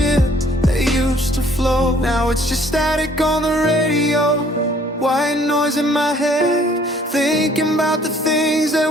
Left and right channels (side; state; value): both; normal; correlation 0.59